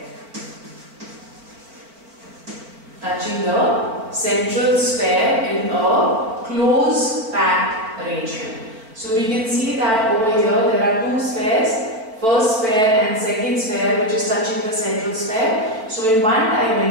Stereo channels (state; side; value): late; left; 4.5 ms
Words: touching the central sphere in a close packed arrangement. So we can see that over here there are two spheres, first sphere and second sphere, which is touching the central sphere. So in one